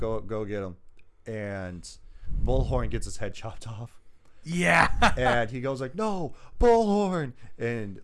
get him," and Bullhorn gets his head chopped off. Yeah. And he goes like, "No, Bullhorn," and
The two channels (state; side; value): identical; both; correlation 1.00